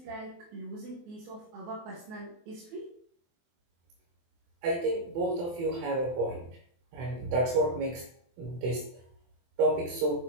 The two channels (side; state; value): left; late; 23 ms